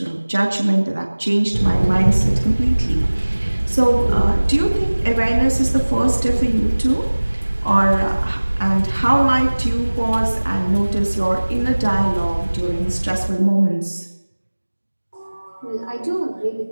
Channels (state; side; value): inverted; both; correlation -1.00